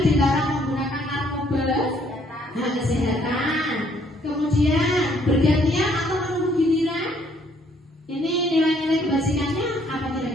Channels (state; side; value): normal; both; correlation 0.66